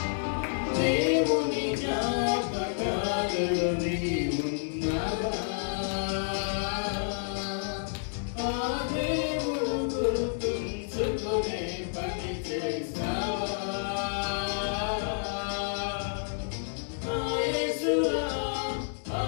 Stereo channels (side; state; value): right; silent; digital silence